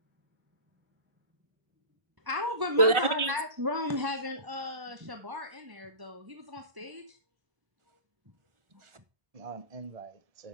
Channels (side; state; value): left; late; 1.4 ms